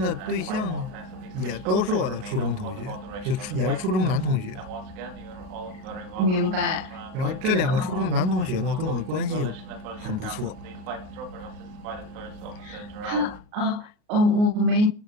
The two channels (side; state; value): left; late; 38 ms